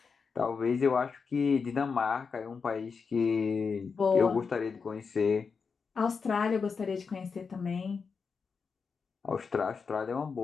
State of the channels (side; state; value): right; quieter; 5.4 dB